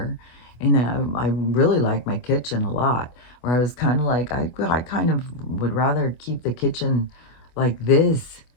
And I really like my kitchen a lot, where I was kind of like, I kind of would rather keep the kitchen like this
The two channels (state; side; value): late; right; 25 ms